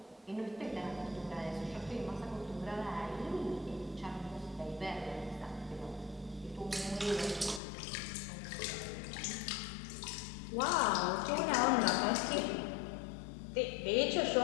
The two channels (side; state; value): right; drops out; at 7.6 s